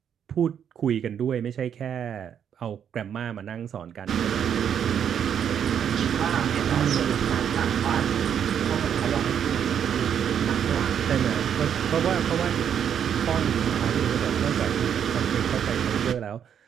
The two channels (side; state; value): left; quieter; 8.6 dB